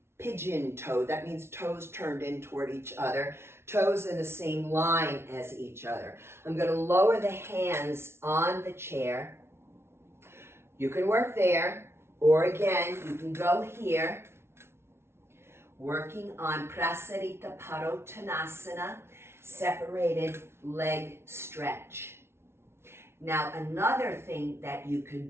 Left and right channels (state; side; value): late; left; 0.12 ms